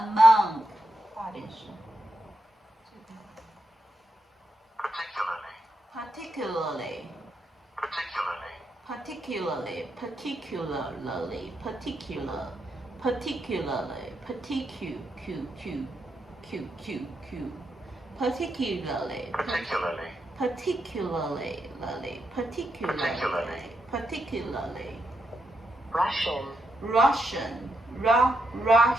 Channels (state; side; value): normal; both; correlation 0.83